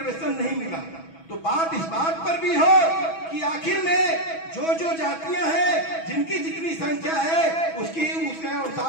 नहीं मिला, तो बात इस बात पर भी हो कि आखिर में जो जो जातियां हैं जिनकी जितनी संख्या है उसके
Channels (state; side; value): late; right; 6.1 ms